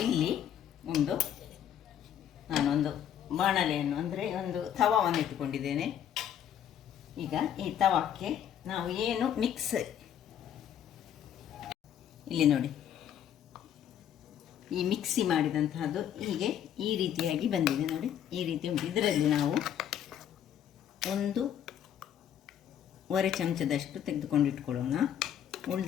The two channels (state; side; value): quieter; right; 9.8 dB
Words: ಇಲ್ಲಿ ನಾನೊಂದು ಬಾಣಲೆಯನ್ನು ಅಂದರೆ ಒಂದು ತವಾವನ್ನು ಇಟ್ಟುಕೊಂಡಿದ್ದೇನೆ. ಈಗ ಈ ತವಕ್ಕೆ ನಾವು ಏನು ಮಿಕ್ಸ್, ಇಲ್ಲಿ ನೋಡಿ, ಈ ಮಿಕ್ಸಿ ಮಾಡಿದಂತಹದ್ದು ಹೀಗೆ ಈ ರೀತಿಯಾಗಿ ಬಂದಿದೆ. ನೋಡಿ, ಈ ರೀತಿ ಉಂಟು. ಇದರಲ್ಲಿ ನಾವು 1 ಚಮಚದಷ್ಟು ತೆಗೆದುಕೊಂಡು ಇಟ್ಕೊಳ್ಳೋಣ.